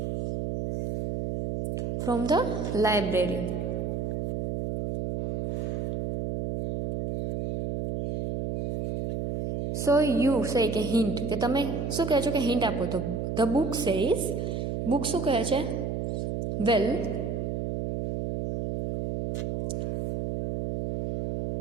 from the library. So you say કે હિન્ટ, કે તમે શું કહે છો કે હિન્ટ આપો. તો ધ બુક સેઝ, બુક શું કહે છે? વેલ,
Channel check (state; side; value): noise; right; hum, 2 dB below the sound